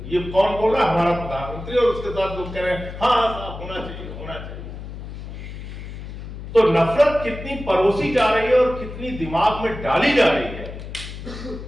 ये कौन बोल रहा है? हमारा प्रधानमंत्री, और उसके साथ लोग कह रहे हैं हाँ हाँ साहब होना चाहिए, होना चाहिए। तो नफरत कितनी परोसी जा रही है और कितनी दिमाग में डाली जा रही है,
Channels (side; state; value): left; noise; hum, 10 dB below the sound